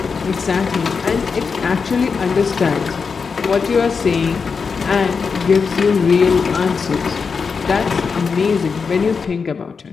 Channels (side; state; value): right; quieter; 5.4 dB